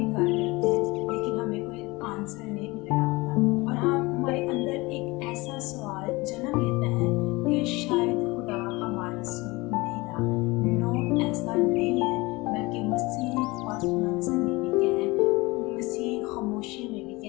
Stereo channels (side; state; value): right; quieter; 23.0 dB